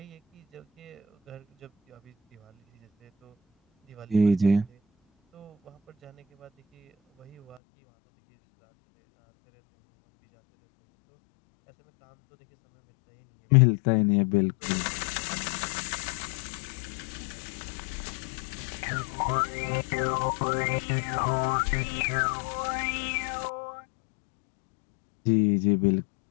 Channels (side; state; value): right; drops out; at 7.6 s